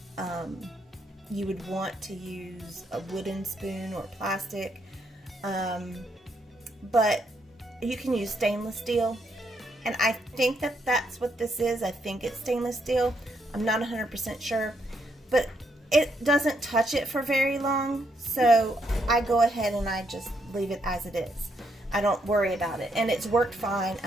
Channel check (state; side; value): normal; both; correlation 0.76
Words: a wooden spoon or plastic, but you can use stainless steel, and I think that's what this is. I think it's stainless steel. I'm not 100% sure, but it doesn't touch it for very long, so I go ahead and I just leave it as it is. I don't worry about it, and it's worked fine.